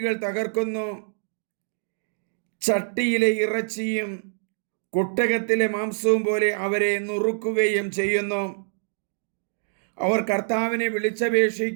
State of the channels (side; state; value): left; silent; digital silence